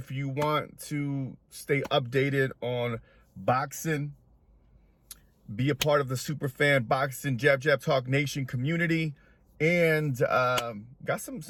you want to stay updated on boxing. Be a part of the Superfan Boxing Jab Talk Nation community, and got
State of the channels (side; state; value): both; identical; correlation 1.00